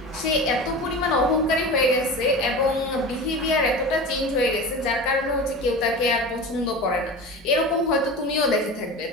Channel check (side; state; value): both; normal; correlation 0.30